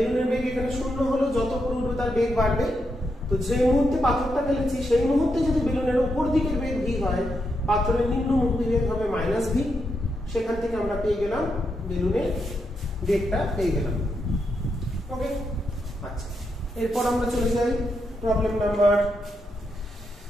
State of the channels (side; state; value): both; normal; correlation 0.82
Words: বেগ এখানে 0 হলো, যত উপরে উঠবে তার বেগ বাড়বে। তো যে মুহূর্তে পাথরটা ফেলেছি সেই মুহূর্তে যদি বেলুনের উপর দিকের বেগ ভি হয়, পাথরের নিম্নমুখী বেগ হবে মাইনাস ভি। সেখান থেকে আমরা পেয়ে গেলাম বেলুনের বেগটা পেয়ে গেলাম। ওকে, আচ্ছা, এরপর আমরা চলে যাই প্রবলেম নাম্বার